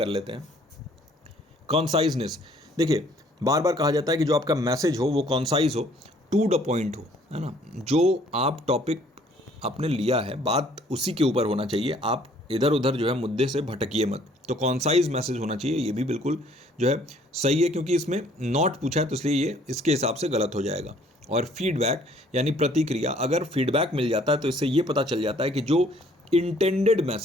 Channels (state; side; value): normal; both; correlation 0.60